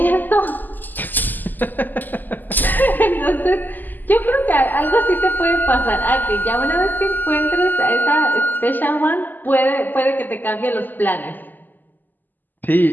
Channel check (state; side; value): late; right; 0.086 ms